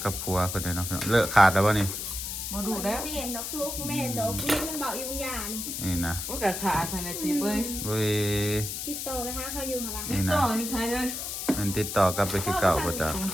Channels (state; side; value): noise; left; hiss, 5 dB below the sound